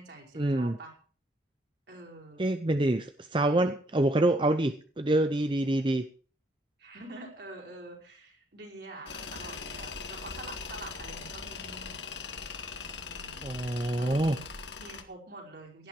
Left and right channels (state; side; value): normal; both; correlation 0.69